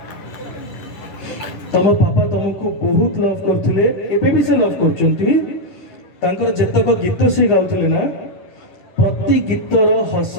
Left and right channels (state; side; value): late; right; 10 ms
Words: तुम पापा तुमको बहुत लव करते एबे भी से लव कर जेतक गीत से गाउले ना प्रति गीतर